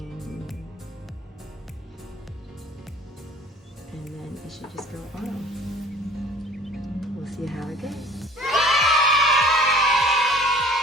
and then it should just go on. We'll see how it goes.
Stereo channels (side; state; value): both; normal; correlation 0.50